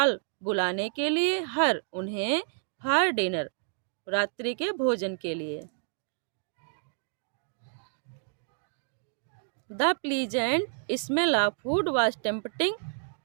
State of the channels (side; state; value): left; silent; digital silence